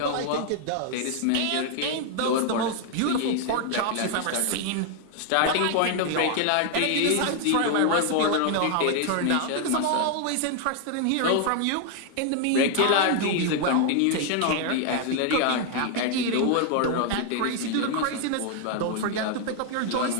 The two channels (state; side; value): different; both; correlation 0.00